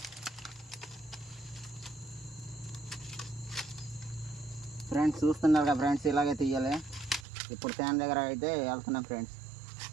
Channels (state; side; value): drops out; left; at 7.2 s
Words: ఫ్రెండ్స్ చూస్తున్నారు కదా ఫ్రెండ్స్, ఇలాగే తీయాలి. ఇప్పుడు తేనె దగ్గర అయితే వెళ్తున్నాం ఫ్రెండ్స్.